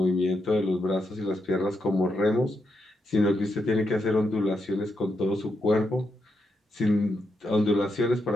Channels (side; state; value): both; normal; correlation 0.82